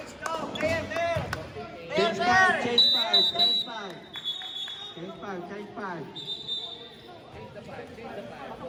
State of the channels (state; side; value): identical; both; correlation 1.00